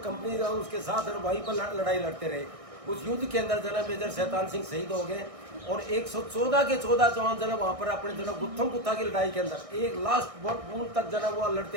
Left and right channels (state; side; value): late; left; 1.6 ms